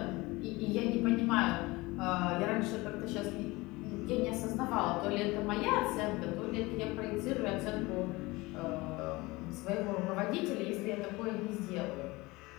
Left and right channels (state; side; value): quieter; right; 22.1 dB